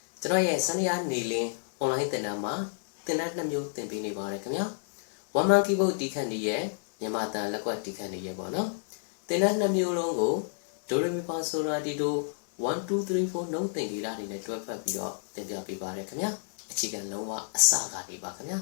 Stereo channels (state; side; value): silent; right; digital silence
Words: ကျွန်တော်ရဲ့စနေရနေလင်း online သင်တန်းမှာသင်တန်း2မျိုးသင်ပေးနေပါတယ်ခင်ဗျာ one man keyboard တီးခတ်နေရဲ့မြန်မာတန်လက်ကွက်တီးခတ်နေရဲ့ပေါ့နော်သင်တန်း2မျိုးလုံးကို do re mi fa so la ti do 1 2 3 4 နှုတ်သင်္ကေတတွေနဲ့တွဲဖက်ပြီးတော့သင်ပြပေးပါတယ်ခင်ဗျာအခြေခံလုံးဝအစကနေပါခင်ဗျာ